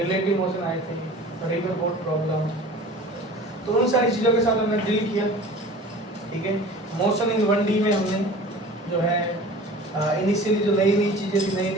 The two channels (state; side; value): normal; both; correlation 0.41